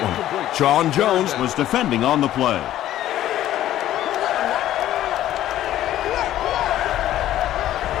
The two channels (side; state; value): right; quieter; 13.0 dB